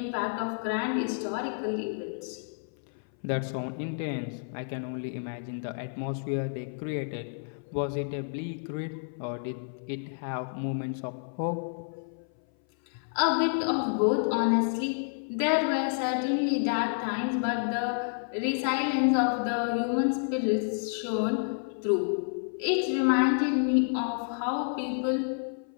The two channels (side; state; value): right; silent; 58 dB below the other